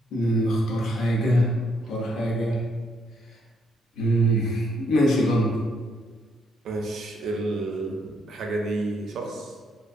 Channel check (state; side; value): normal; both; correlation 0.73